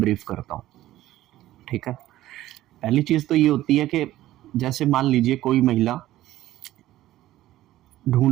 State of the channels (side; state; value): left; quieter; 14.8 dB